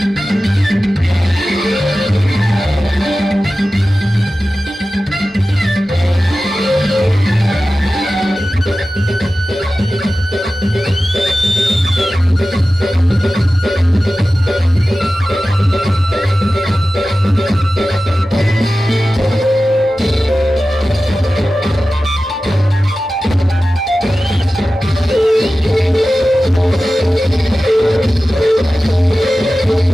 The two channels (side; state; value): both; normal; correlation 0.95